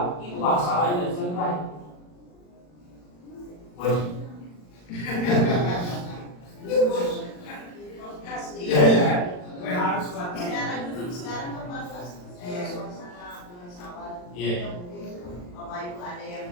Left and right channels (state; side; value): late; right; 40 ms